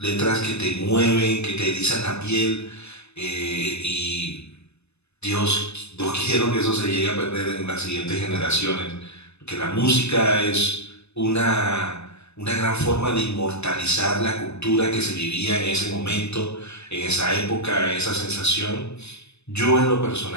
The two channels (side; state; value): right; late; 0.81 ms